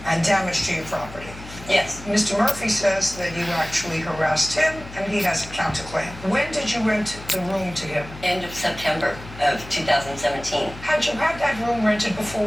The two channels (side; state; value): left; noise; hum, 15 dB below the sound